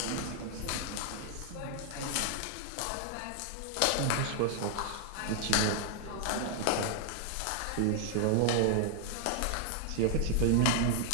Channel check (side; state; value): both; different; correlation 0.00